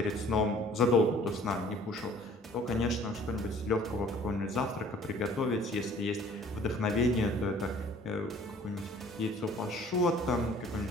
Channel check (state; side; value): normal; both; correlation 0.53